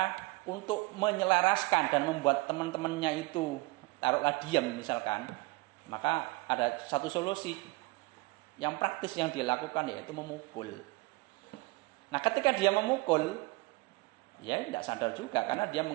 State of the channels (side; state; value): left; quieter; 23.5 dB